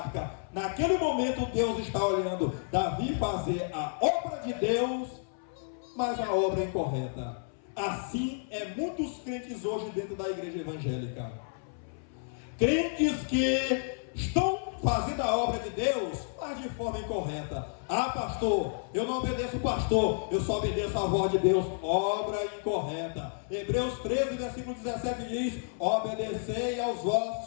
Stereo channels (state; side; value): silent; right; 57 dB below the other